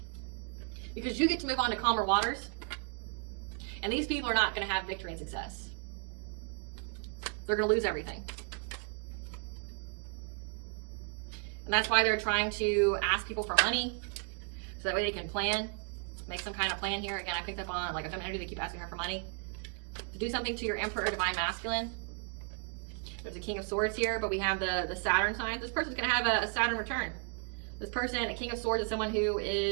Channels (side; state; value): left; quieter; 38.9 dB